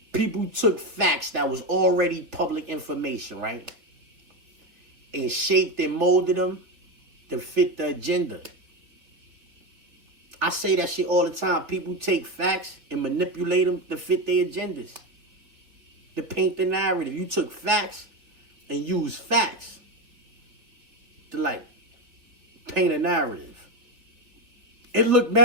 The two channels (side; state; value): left; late; 3.5 ms